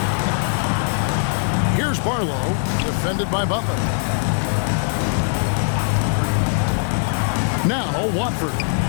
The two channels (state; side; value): silent; right; digital silence